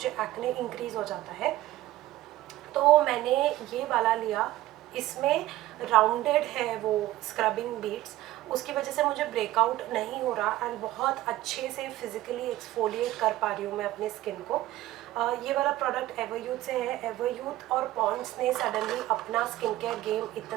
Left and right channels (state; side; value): quieter; left; 15.7 dB